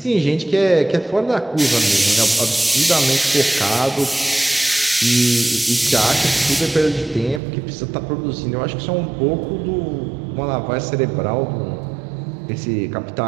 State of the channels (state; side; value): drops out; left; at 7.4 s